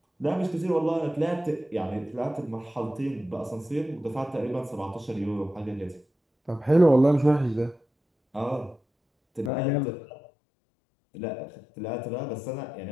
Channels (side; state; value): right; drops out; at 9.5 s